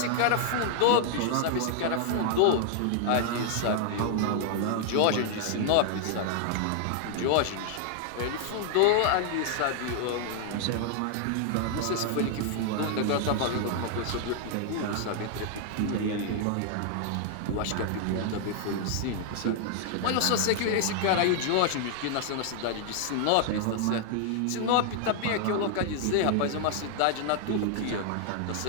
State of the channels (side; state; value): both; different; correlation 0.00